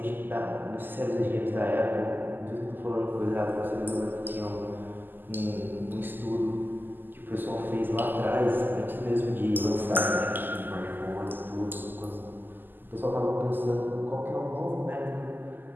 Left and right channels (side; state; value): left; late; 0.091 ms